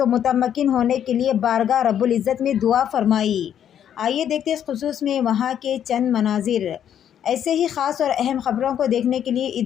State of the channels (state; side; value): quieter; right; 9.6 dB